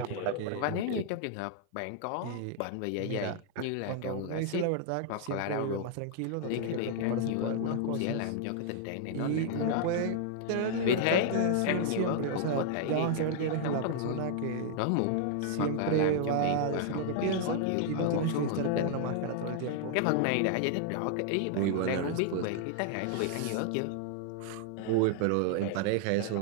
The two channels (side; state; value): both; different; correlation -0.01